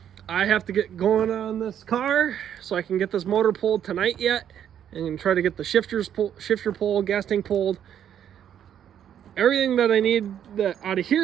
I have to get going on this car so I can get this motor pulled tonight yet, and try to get the shifter pulled, gas tank pulled. Everything that I need out of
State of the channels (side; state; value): left; quieter; 9.6 dB